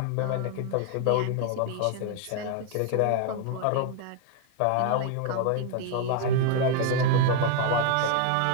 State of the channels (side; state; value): both; different; correlation 0.01